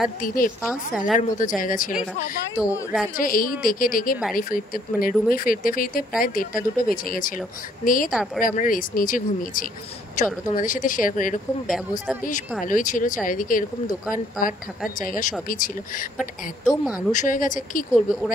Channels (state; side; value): normal; both; correlation 0.65